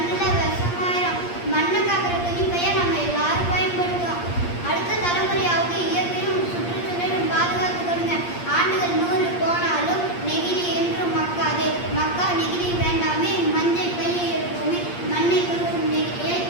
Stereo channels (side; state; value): right; late; 8.6 ms